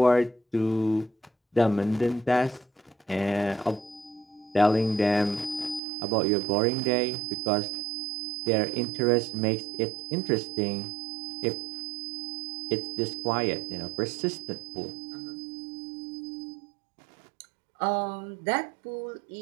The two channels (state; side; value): drops out; left; at 5.8 s